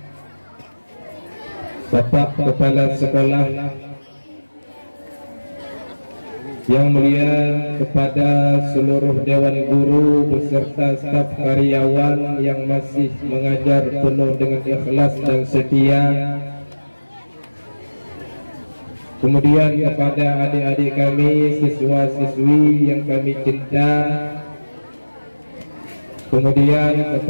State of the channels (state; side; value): inverted; both; correlation -1.00